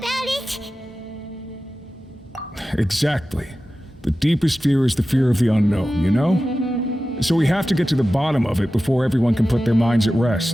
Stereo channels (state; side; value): normal; both; correlation 0.94